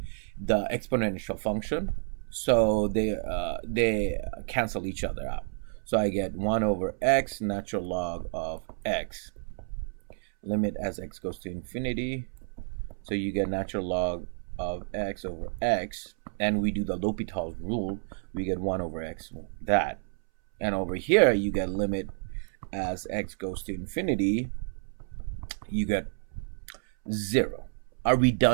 the exponential function. So they cancel each other out. So I get 1 over x natural log of x. Limit as x goes to infinity. So you get natural log of x over x. And we do the Hopitals rule. We get 1 over x, that. And over here, you get limit as x goes to infinity. You get 0. Are we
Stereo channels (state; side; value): silent; left; 58 dB below the other